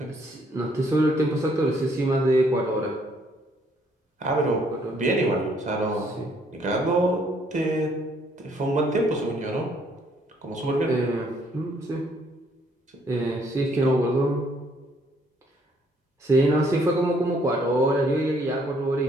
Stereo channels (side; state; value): both; normal; correlation 0.66